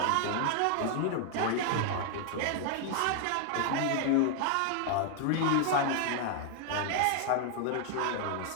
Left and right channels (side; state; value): both; different; correlation 0.00